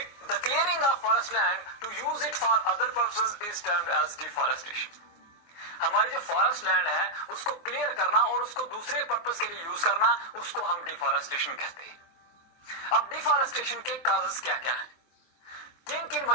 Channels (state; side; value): late; right; 23 ms